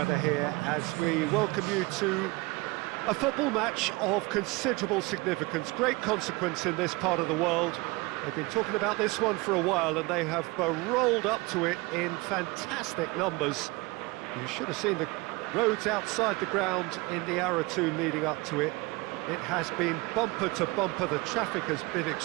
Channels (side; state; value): left; quieter; 23.8 dB